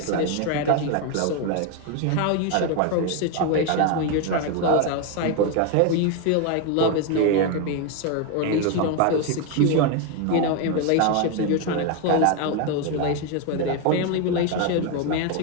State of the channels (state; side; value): different; both; correlation 0.01